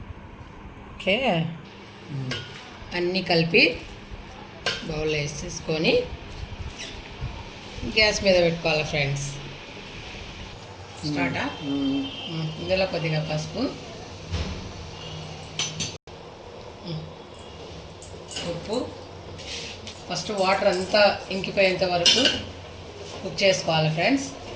ఓకే, అన్నీ కలిపి బౌల్లో వేసేసుకొని గ్యాస్ మీద పెట్టుకోవాలి ఫ్రెండ్స్. స్టార్టా. ఇందులో కొద్దిగా పసుపు, ఉప్పు. ఫస్ట్ వాటర్ అంతా ఇంకిపోయేంత వరకు కుక్ చేసుకోవాలి ఫ్రెండ్స్.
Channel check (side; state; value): both; identical; correlation 1.00